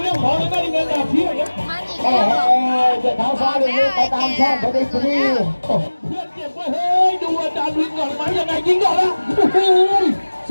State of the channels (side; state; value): both; inverted; correlation -1.00